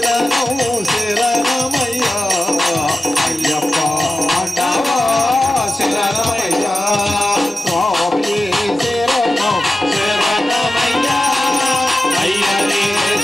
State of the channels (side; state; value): both; normal; correlation 0.93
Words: శరణమయ్యా అయ్యప్ప అండవా శరణమయ్యా స్వామి శరణం శరణమయ్యా అయ్యనే